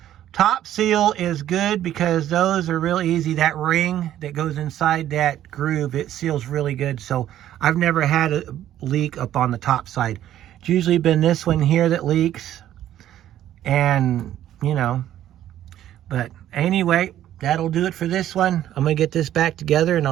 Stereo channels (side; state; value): left; quieter; 12.1 dB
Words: Top seal is good because those are real easy. That ring that goes inside that groove, it seals really good. So I've never had a leak up on the top side. It's usually been this one here that leaks. And, you know, but anyway, that'll do it for this one. I'm going to get this back together and